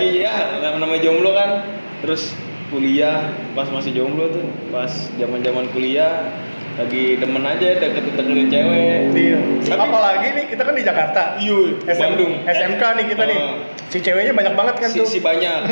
ya namanya jomblo kan. Terus kuliah pas masih jomblo tuh, pas zaman-zaman kuliah lagi demen aja deketin cewek. Iya. Tapi- Apalagi nih kita kan di Jakarta. Iya, Bandung. SMK nih kita nih. Si ceweknya banyak banget kan tuh. Si banyak,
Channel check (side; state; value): both; inverted; correlation -1.00